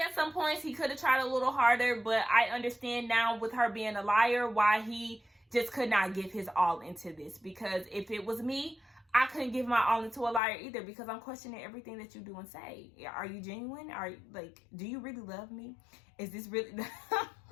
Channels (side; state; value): right; drops out; at 10.4 s